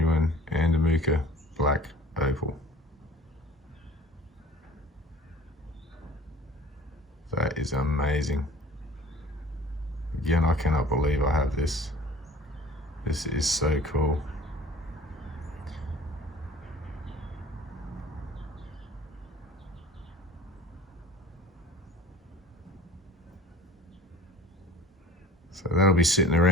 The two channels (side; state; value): both; normal; correlation 0.46